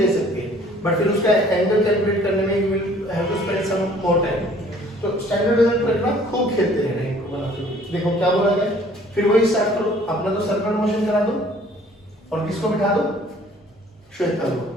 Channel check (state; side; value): normal; both; correlation 0.55